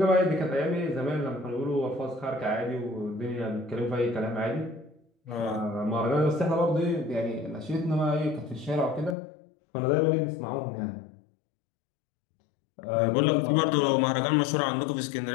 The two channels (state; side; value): drops out; right; at 9.2 s